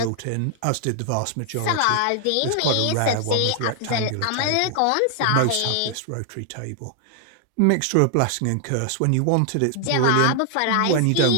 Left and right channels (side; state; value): both; different; correlation 0.00